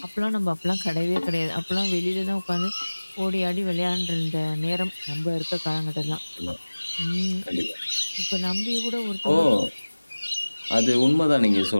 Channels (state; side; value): inverted; both; correlation -1.00